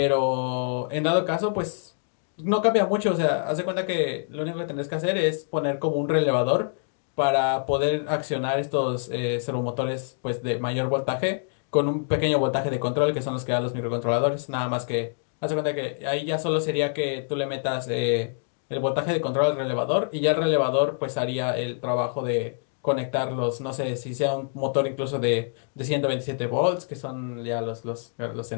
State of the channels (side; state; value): right; silent; digital silence